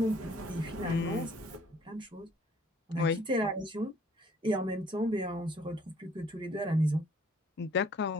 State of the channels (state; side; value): normal; both; correlation 0.60